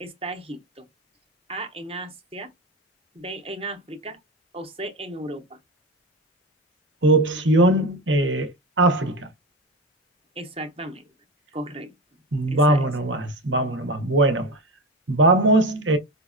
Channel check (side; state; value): both; normal; correlation 0.23